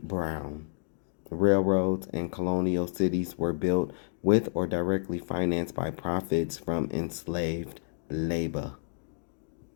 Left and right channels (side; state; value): right; silent; digital silence